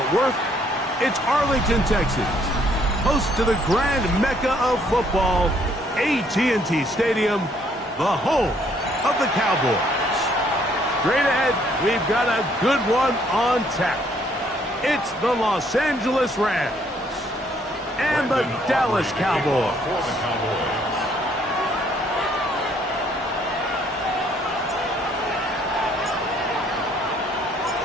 Worth, it's Arlington, Texas, host to the grand mecca of football, AT&T Stadium, the home of the Cowboys. Straight ahead, we've got a good one on tap. It's the Los Angeles Rams and the Dallas Cowboys.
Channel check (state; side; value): normal; both; correlation 0.66